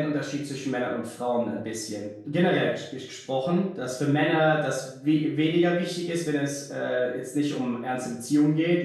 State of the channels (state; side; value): identical; both; correlation 1.00